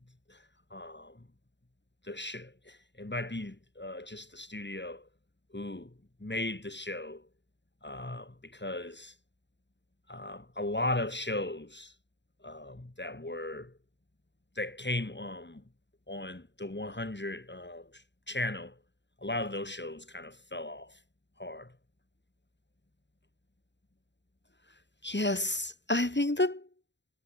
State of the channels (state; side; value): late; right; 0.52 ms